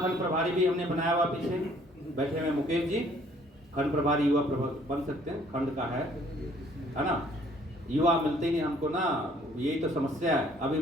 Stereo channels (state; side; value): normal; both; correlation 0.60